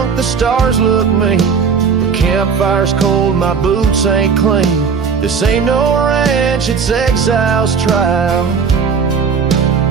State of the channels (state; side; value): quieter; left; 5.9 dB